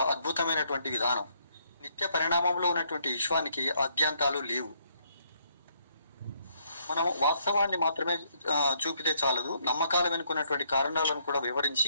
అద్భుతమైనటువంటి విధానం. నిత్య పరిణామంలో ఉన్నటువంటి విశ్వానికి ఆద్యంతాలు లేవు. మనం వాస్తవాన్ని మాత్రమే చూపితే చాలదు, నమ్మకాలు వెనుకున్నటువంటి కారణాలను కూడా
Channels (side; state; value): both; inverted; correlation -0.70